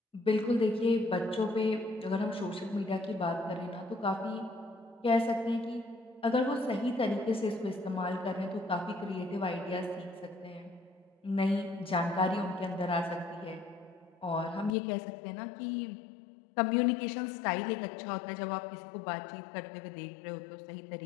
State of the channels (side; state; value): right; drops out; at 14.8 s